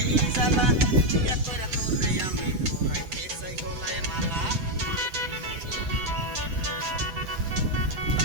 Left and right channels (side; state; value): left; late; 7.8 ms